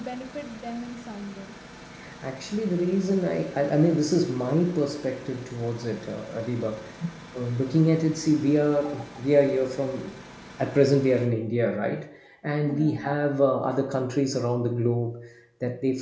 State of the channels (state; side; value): identical; both; correlation 1.00